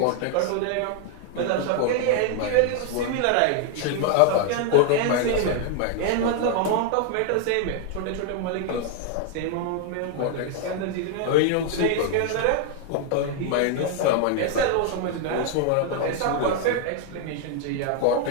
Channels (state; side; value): different; both; correlation 0.00